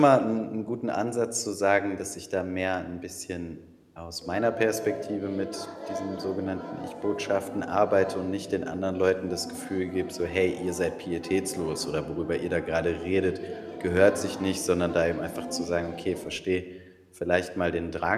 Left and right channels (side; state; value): both; identical; correlation 1.00